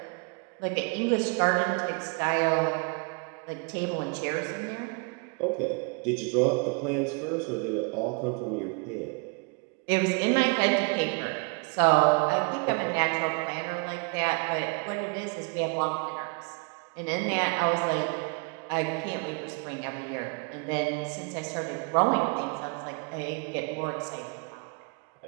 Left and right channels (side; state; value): left; quieter; 34.5 dB